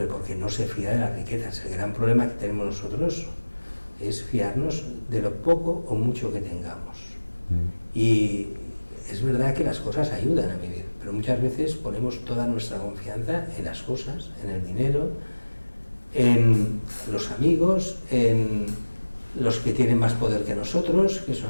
porque no se fía de las riquezas. El gran problema que tenemos nosotros es fiarnos de lo poco o mucho que tengamos. Y es verdad que las cosas ayudan a vivir, pero muchas veces ponemos toda nuestra confianza en las cosas, en el dinero, en los amigos, en los que tienen más poder que nosotros, que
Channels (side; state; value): both; inverted; correlation -1.00